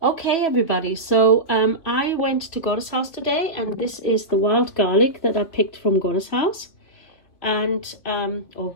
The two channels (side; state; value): right; late; 3.0 ms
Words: Okay, everybody, so I went to Goddess house today, and this is the wild garlic that I picked from Goddess house and or